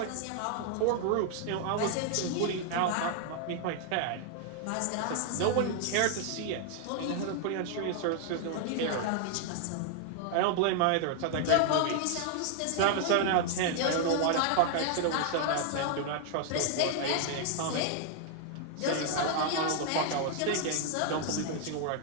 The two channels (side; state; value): both; different; correlation 0.00